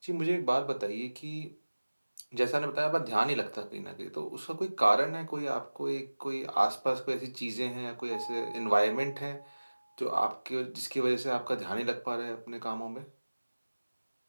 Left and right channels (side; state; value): both; inverted; correlation -1.00